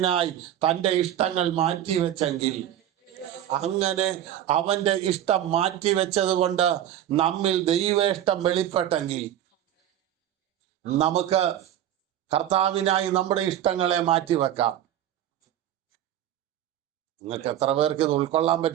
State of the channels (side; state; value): left; quieter; 11.4 dB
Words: തൻ്റെ ഇഷ്ടങ്ങൾ മാറ്റിവെച്ചെങ്കിൽ, അങ്ങനെ അവൻ്റെ ഇഷ്ടം മാറ്റിവെച്ചത് കൊണ്ട് നമ്മിൽ ദൈവേഷ്ടം വെളിപ്പെട്ടെങ്കിൽ, നമുക്ക് കർത്താവിനായി നമ്മുടെ ഇഷ്ടങ്ങളെ മാറ്റിവെക്കാം. നിങ്ങൾക്ക് എത്ര പേർക്ക് ഇത് ഉൾക്കൊള്ളാൻ